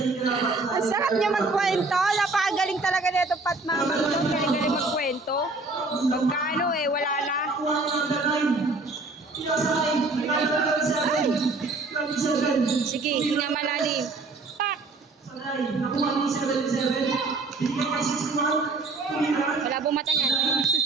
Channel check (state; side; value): quieter; left; 3.5 dB